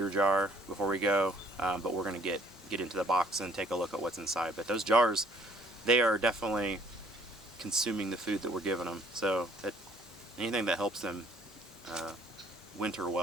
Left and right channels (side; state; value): both; normal; correlation 0.59